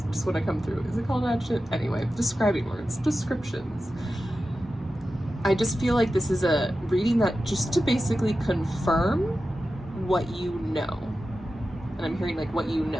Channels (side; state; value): both; normal; correlation 0.92